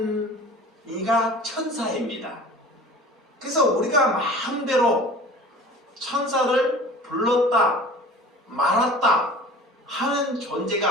이가 천사입니다. 그래서 우리가 마음대로 천사를 불렀다 말았다 하는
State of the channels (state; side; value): normal; both; correlation 0.43